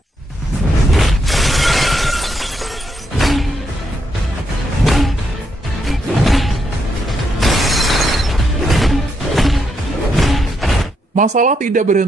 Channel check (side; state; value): both; normal; correlation 0.79